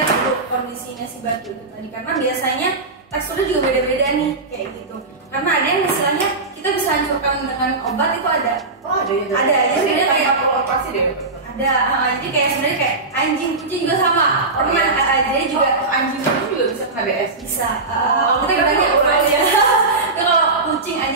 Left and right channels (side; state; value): left; quieter; 3.5 dB